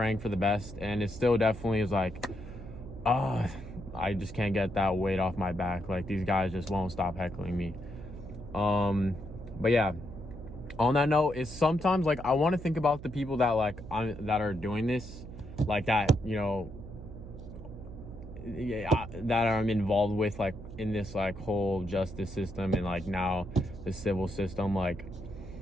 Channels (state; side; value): noise; right; hum, 13 dB below the sound